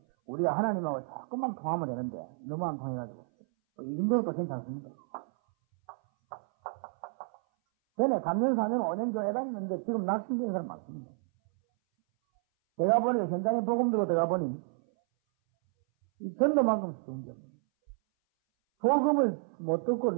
우리가 하나님하고 조금만 통하면 되는데, 너무 안 통해가지고, 이 정도는 또 괜찮습니다. 전에 3년, 4년, 5년 교회 다녔는데, 지금 낙심된 사람 많습니다. 제가 보니까 현장에 복음 들고 들어가 보니, 이 전도만큼 쉬운 게 없습니다. 복음을 못 듣고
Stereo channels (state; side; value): silent; left; 57 dB below the other